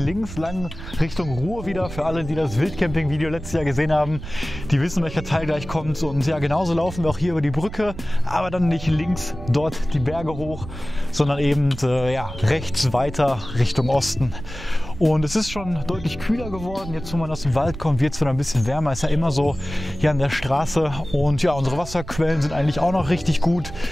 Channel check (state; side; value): noise; right; rumble, 12 dB below the sound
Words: lang Richtung Ruhr wieder. Für alle, die das Wildcamping-Video letztes Jahr gesehen haben, die wissen, welcher Teil gleich kommt. Und ja, genauso laufen wir auch hier über die Brücke, aber dann nicht links dort die Berge hoch, sondern eben ja, rechts weiter Richtung Osten. Und es ist schon deutlich kühler geworden. Jetzt, wo man aus dem Wald kommt, wird es wieder ein bisschen wärmer. Ist ja immer so hier an der Straße. Und ja, unsere Wasserquellen sind eigentlich auch noch richtig gut.